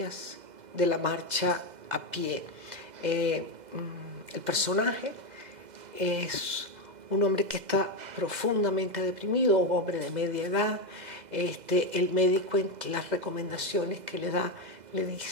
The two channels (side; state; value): left; late; 2.0 ms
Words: de la marcha a pie. El personaje es un hombre que está profundamente deprimido, un hombre de media edad. El médico, en las recomendaciones que le da, le